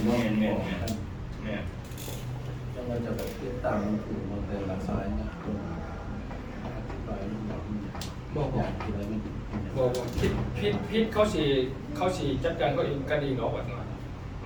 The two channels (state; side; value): identical; both; correlation 1.00